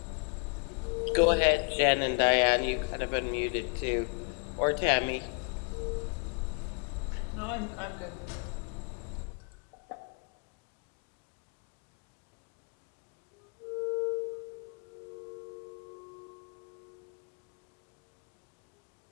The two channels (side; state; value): right; quieter; 35.4 dB